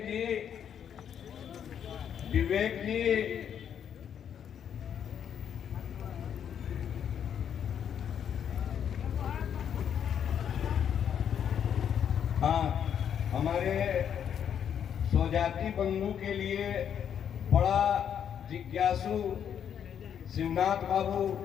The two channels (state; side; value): quieter; right; 8.6 dB